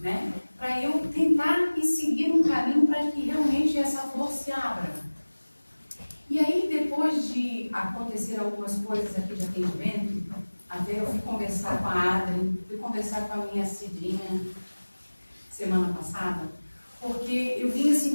né? Para eu tentar ir seguir um caminho para que realmente essa flor se abra. E aí, depois de acontecer algumas coisas aqui de atendimento, até eu fui conversar com a Adri, fui conversar com a minha Cidinha semana passada, porque eu vinha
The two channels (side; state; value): both; inverted; correlation -1.00